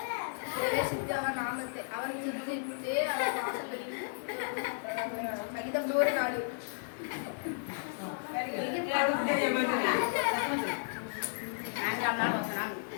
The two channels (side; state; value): right; silent; digital silence